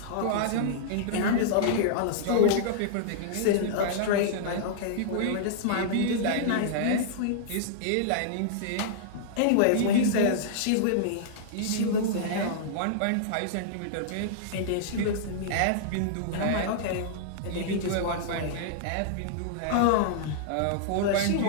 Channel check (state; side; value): different; both; correlation -0.02